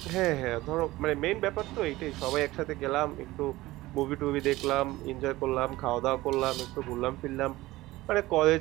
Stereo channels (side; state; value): left; quieter; 18.2 dB